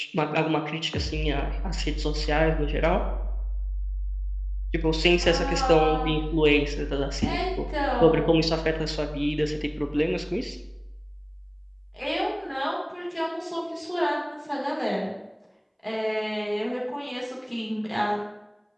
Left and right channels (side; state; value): both; identical; correlation 1.00